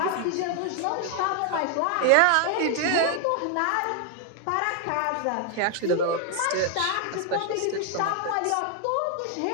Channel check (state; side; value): different; both; correlation 0.00